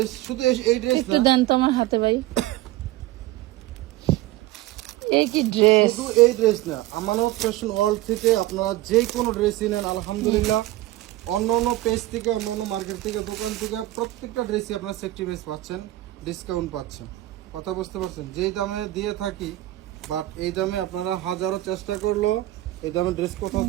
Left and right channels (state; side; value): quieter; left; 16.7 dB